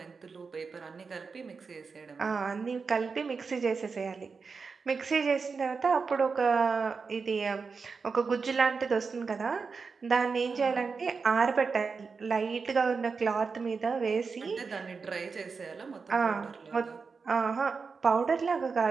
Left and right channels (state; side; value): quieter; left; 5.0 dB